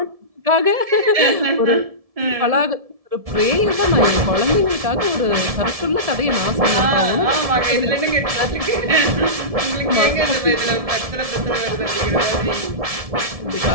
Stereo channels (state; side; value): late; left; 1.7 ms